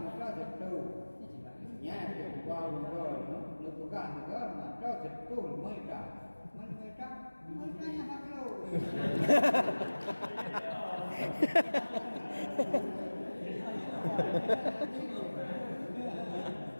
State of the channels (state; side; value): inverted; both; correlation -1.00